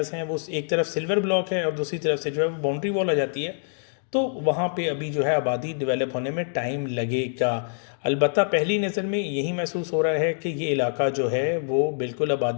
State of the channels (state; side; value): silent; right; digital silence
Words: हैं वो एक तरफ सिल्वर ब्लॉक है और दूसरी तरफ से जो है वो बाउंड्री वॉल आ जाती है, तो वहाँ पे अभी जो है आबादी डेवलप होने में टाइम लगेगा। अलबत्ता पहली नज़र में यही महसूस हो रहा है कि ये इलाका जो है वो बिल्कुल